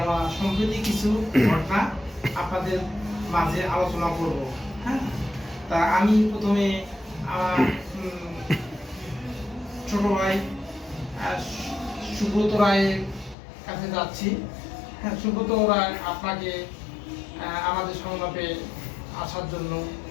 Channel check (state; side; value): drops out; right; at 13.4 s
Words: সম্প্রতি কিছু ঘটনা আপনাদের মাঝে আলোচনা করব। হ্যাঁ, তা আমি প্রথমে আমার ছোট ভাই সুব্রত রায়ের কাছে যাচ্ছি। হ্যাঁ, সুব্রত রায়, আপনাকে আমাদের সংলাপে আসার জন্য